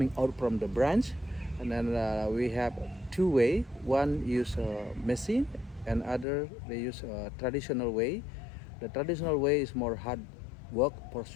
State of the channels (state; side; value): drops out; right; at 6.2 s